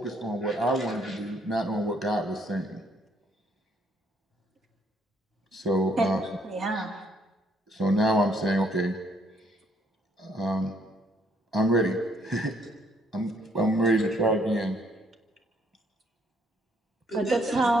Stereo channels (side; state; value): both; normal; correlation 0.68